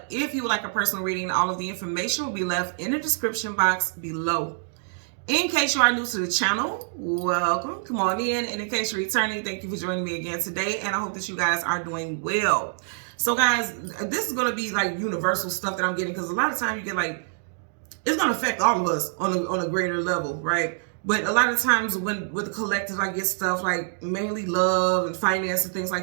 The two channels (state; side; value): silent; left; digital silence